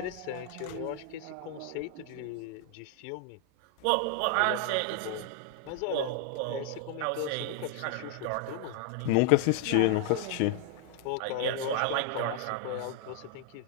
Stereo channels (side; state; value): both; different; correlation 0.00